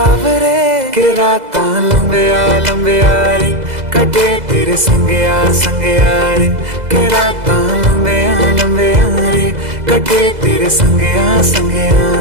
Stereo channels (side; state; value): left; late; 2.0 ms